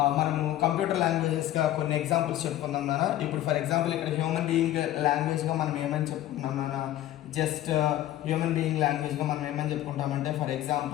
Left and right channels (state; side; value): quieter; right; 13.5 dB